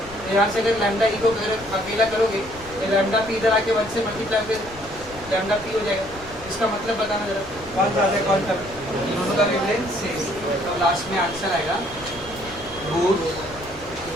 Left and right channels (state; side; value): noise; left; rumble, 18 dB below the sound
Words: तो यहाँ से अगर लैम्डा ई को अगर अकेला करोगे तो लैम्डा पी इधर आके 1 से मल्टीप्लाई फिर लैम्डा पी हो जाएगा, इसका मतलब बताना जरा, कौन ज़्यादा है कौन कम, दोनों का वेवलेंथ सेम, तो लास्ट में आंसर आएगा बोथ